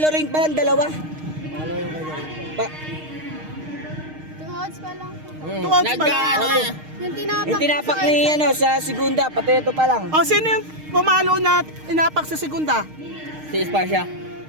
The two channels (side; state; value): left; late; 6.5 ms